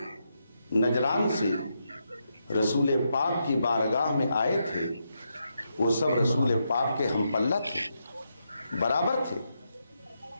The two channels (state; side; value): inverted; both; correlation -0.83